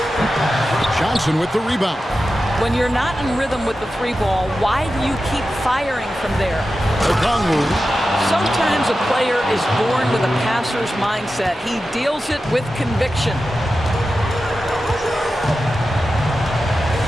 Johnson with the rebound. When you're not in rhythm with the 3 ball, why do you keep firing from there? Sometimes a player is born with a passer's mindset. He deals it with conviction.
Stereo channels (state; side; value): normal; both; correlation 0.92